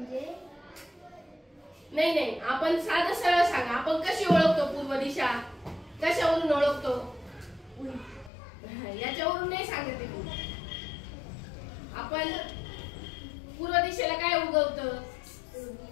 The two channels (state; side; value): drops out; right; at 8.3 s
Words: नाही आपण साधं सरळ सांगा. आपण कशी ओळखतो पूर्व दिशा? कशावरून ओळखतो? याच्यावरून नाही सांगते मी. आपण पूर्व दिशेला काय उगवतं?